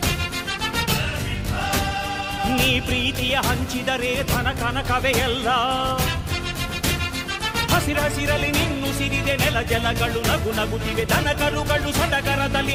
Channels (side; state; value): both; identical; correlation 1.00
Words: ನೀ ಪ್ರೀತಿಯ ಹಂಚಿದರೆ ಧನ ಕನಕವೇ ಎಲ್ಲ. ಹಸಿರಸಿರಲಿ ನಿನ್ನು ಸಿರಿದೆ ನೆಲ ಜಲಗಳು ನಗು ನಗುತ್ತಿವೆ, ದನ ಕರುಗಳು